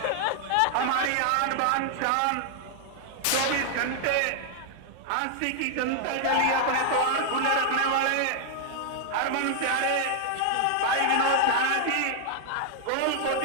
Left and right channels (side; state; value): both; different; correlation 0.00